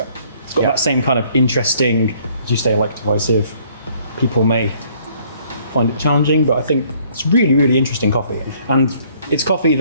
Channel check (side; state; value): both; inverted; correlation -0.61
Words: It's got that same kind of interesting, as you say, like divisive. People may find it challenging, but I think it's really, really interesting coffee. And it's coffee